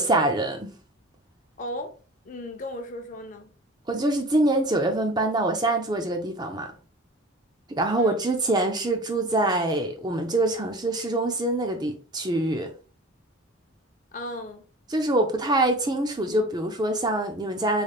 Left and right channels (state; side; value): normal; both; correlation 0.37